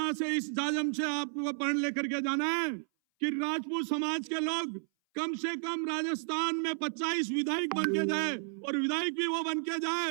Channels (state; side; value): silent; left; 56 dB below the other